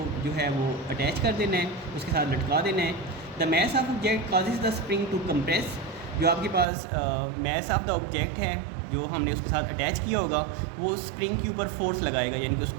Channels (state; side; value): drops out; left; at 6.7 s